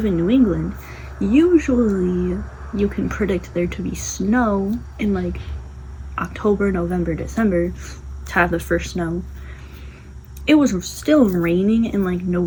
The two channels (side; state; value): both; identical; correlation 1.00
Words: in New England, usually you can predict there to be snow in, like, October, November, December to have the first snow. It was still raining in like